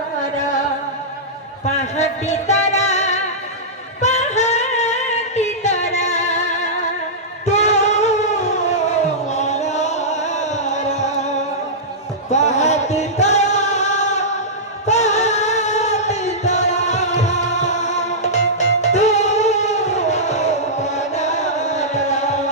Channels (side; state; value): both; normal; correlation -0.14